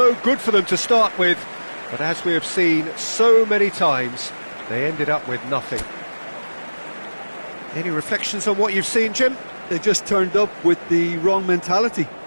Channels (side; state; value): both; inverted; correlation -1.00